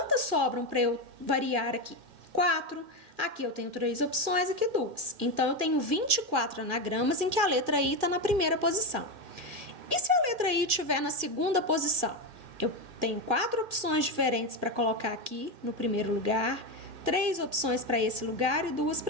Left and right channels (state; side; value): late; left; 1.9 ms